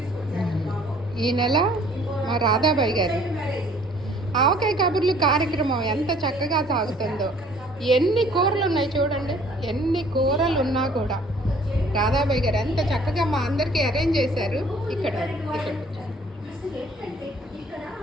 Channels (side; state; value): both; normal; correlation 0.56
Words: ఈ నెల మా రాధాబాయి గారు ఆవకాయ కబుర్లు కార్యక్రమం ఎంత చక్కగా సాగుతుందో. ఎన్ని కూరలు ఉన్నాయి చూడండి, ఎన్ని కూరలు ఉన్నా కూడా రాధాబాయి గారు ఎంత చక్కగా మా అందరికీ అరేంజ్ చేశారు. ఇక్కడ